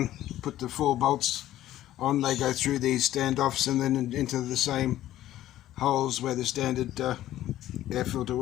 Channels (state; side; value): quieter; right; 13.6 dB